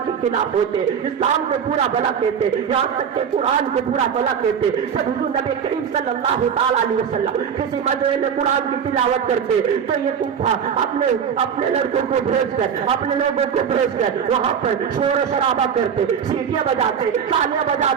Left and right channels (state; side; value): quieter; left; 7.5 dB